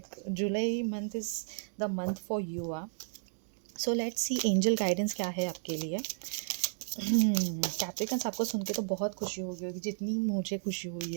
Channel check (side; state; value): left; silent; digital silence